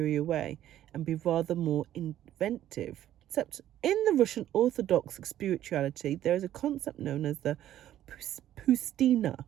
way and be rather more inventive. Except in the Russian Orthodox spirituality, there is a concept known as the pustina.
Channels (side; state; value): left; quieter; 12.2 dB